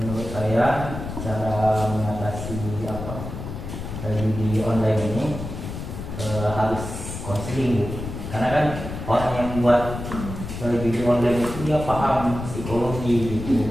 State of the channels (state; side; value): noise; left; rumble, 8 dB below the sound